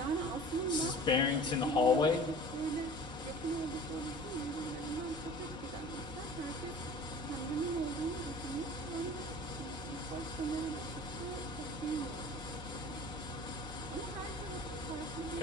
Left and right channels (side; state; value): both; normal; correlation 0.43